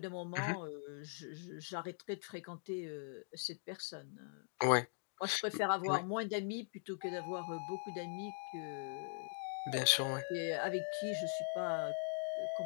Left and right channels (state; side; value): silent; right; digital silence